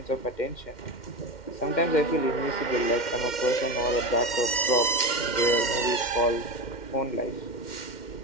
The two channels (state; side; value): late; right; 2.1 ms